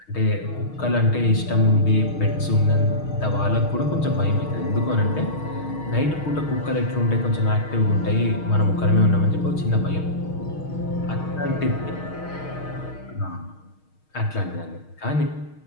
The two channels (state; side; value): late; right; 6.4 ms